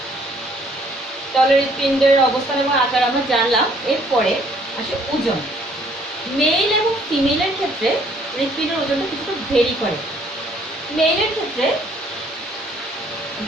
তাহলে হৃৎপিণ্ডের অবস্থান এবং আকার আমরা জানলাম। এরপরে আসে ওজন। মেল এবং ফিমেলের ক্ষেত্রে হৃৎপিণ্ডের ওজনটা কিছুটা ভেরি করে। মেইলের ক্ষেত্রে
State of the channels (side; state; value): both; normal; correlation 0.62